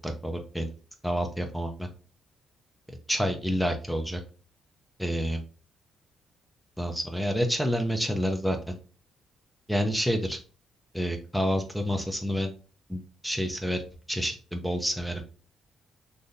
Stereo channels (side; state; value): both; normal; correlation 0.91